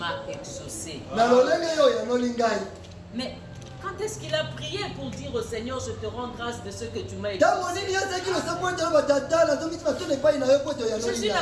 exaucé. Mais quand est-ce qu'il a prié pour dire au Seigneur, je te rends grâce de ce que tu m'as exaucé? Jésus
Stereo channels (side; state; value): both; identical; correlation 1.00